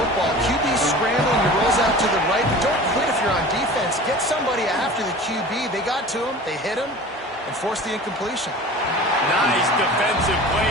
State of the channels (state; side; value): normal; both; correlation 0.39